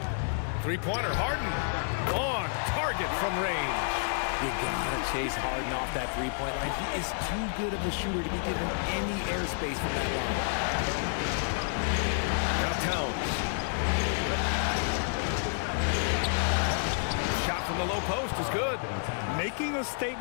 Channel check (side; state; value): right; silent; digital silence